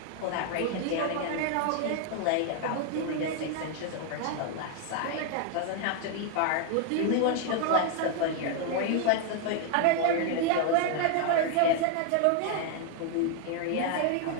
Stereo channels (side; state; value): both; different; correlation 0.01